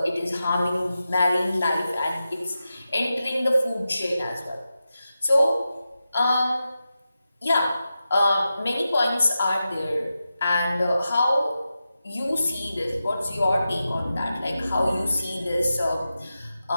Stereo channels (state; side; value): inverted; both; correlation -0.91